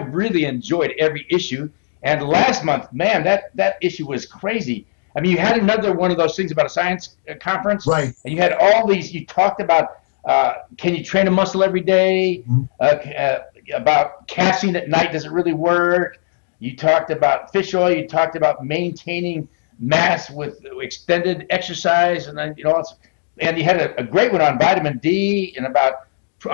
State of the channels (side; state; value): right; silent; digital silence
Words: enjoyed every issue. And last month, man, that issue was crazy. I mean, you had another one of those things about a science conference. Right. And you had all these, you talked about can you train a muscle every day? About casting at night, does it really work? You talked about fish oil. You talked about maintaining mass with extended exercise, and then and you had a great one on vitamin D and about